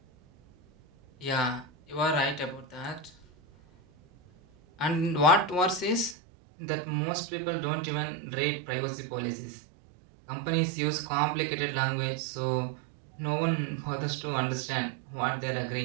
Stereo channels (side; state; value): left; drops out; at 6.2 s